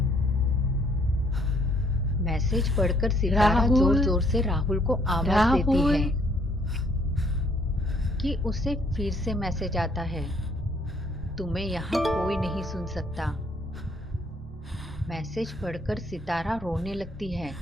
मैसेज पढ़कर सितारा जोर जोर से राहुल को आवाज देती है कि उसे फिर से मैसेज आता है, तुम्हें यहाँ कोई नहीं सुन सकता। मैसेज पढ़कर सितारा रोने लगती है।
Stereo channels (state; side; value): normal; both; correlation 0.65